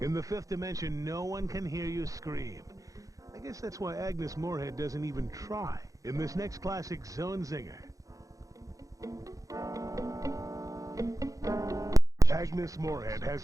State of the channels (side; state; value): left; late; 0.16 ms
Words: In the fifth dimension, no one can hear you scream. I guess that's why Agnes Moorehead doesn't even try in this next classic Zone Zinger. Agnes Moorehead has